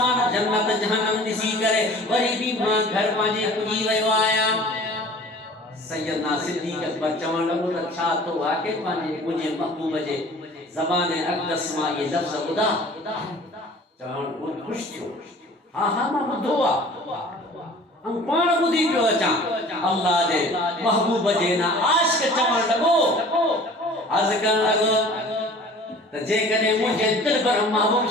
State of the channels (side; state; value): both; normal; correlation 0.46